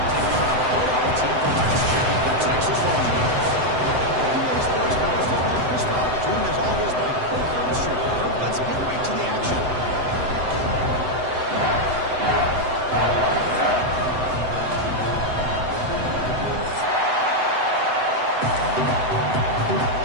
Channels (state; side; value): late; left; 7.9 ms